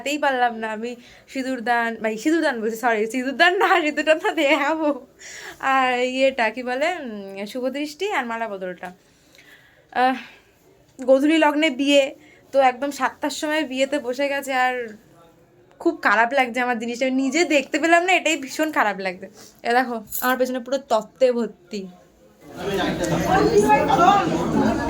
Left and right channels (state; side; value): identical; both; correlation 1.00